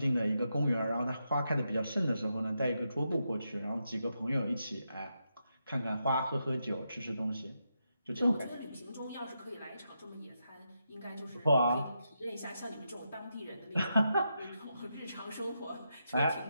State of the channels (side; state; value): both; inverted; correlation -0.84